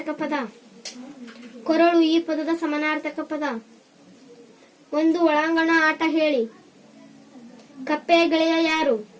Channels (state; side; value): identical; both; correlation 1.00